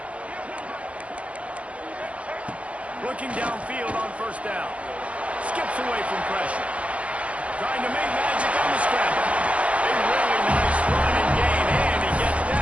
Looking downfield on first down. Skips away from pressure. Trying to make magic on the scramble. A really nice run and gain, and he gets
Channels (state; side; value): late; left; 0.063 ms